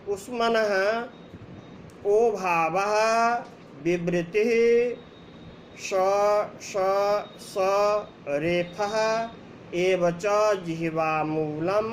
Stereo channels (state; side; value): identical; both; correlation 1.00